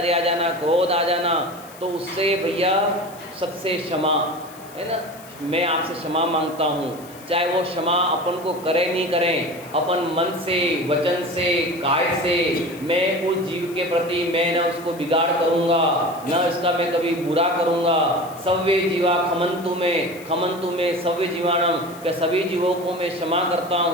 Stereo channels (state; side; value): noise; left; hiss, 21 dB below the sound